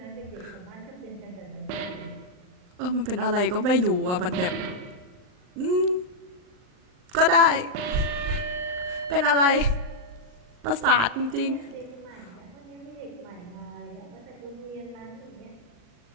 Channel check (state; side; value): late; left; 39 ms